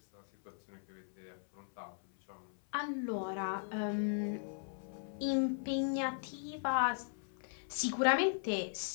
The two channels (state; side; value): silent; right; 52 dB below the other